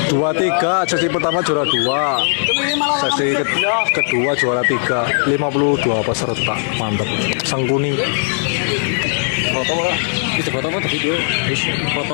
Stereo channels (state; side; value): silent; right; digital silence